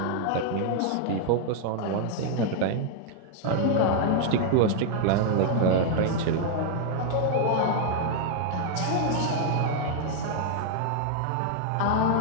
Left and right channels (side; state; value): both; different; correlation 0.00